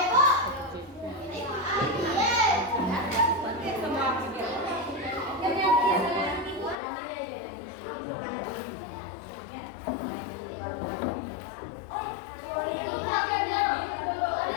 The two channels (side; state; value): right; drops out; at 6.8 s